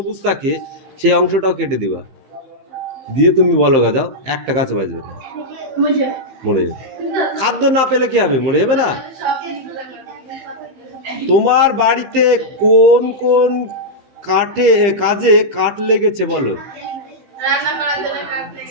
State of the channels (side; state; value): left; late; 15 ms